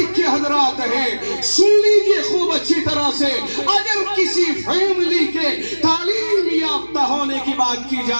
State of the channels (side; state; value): both; inverted; correlation -1.00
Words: حضرات ہیں، سن لیجئے خوب اچھی طرح سے، اگر کسی فیملی کے تعلیم یافتہ ہونے کی بات کی جا